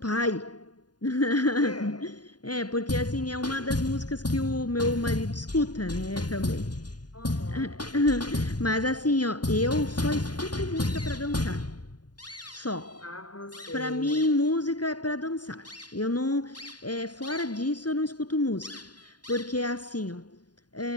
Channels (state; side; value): late; right; 0.70 ms